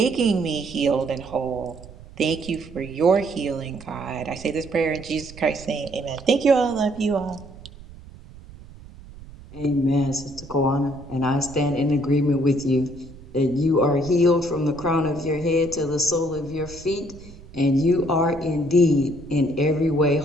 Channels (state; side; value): noise; right; rumble, 18 dB below the sound